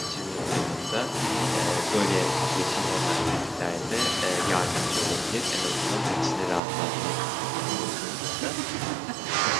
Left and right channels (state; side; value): drops out; left; at 6.6 s